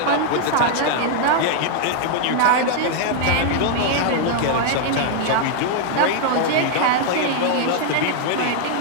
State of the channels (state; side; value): different; both; correlation 0.00